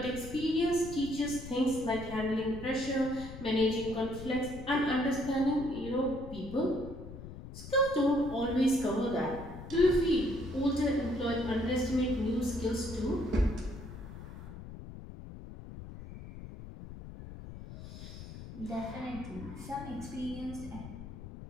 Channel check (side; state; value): left; noise; rumble, 12 dB below the sound